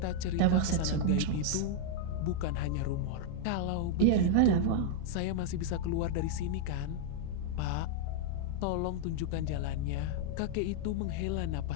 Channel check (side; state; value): both; different; correlation -0.01